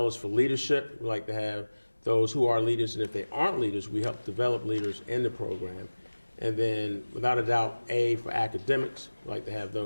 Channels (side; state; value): both; inverted; correlation -1.00